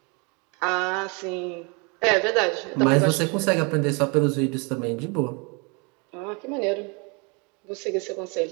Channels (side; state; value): left; quieter; 31.7 dB